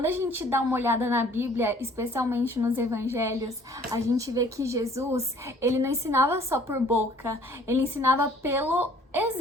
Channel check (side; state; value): both; normal; correlation 0.56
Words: a gente dá uma olhada na Bíblia, especialmente nos evangelhos, a gente vê que Jesus, ele não ensinava só por boca, ele ensinava pelo